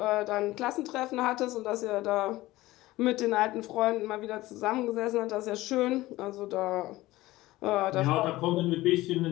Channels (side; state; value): right; quieter; 17.8 dB